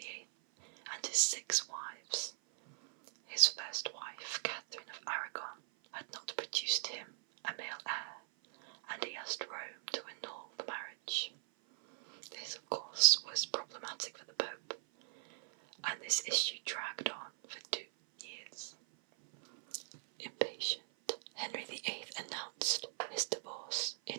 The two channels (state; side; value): silent; left; 51 dB below the other